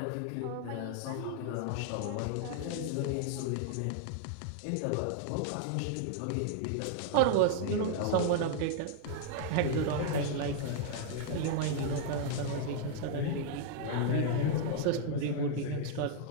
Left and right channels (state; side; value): different; both; correlation -0.01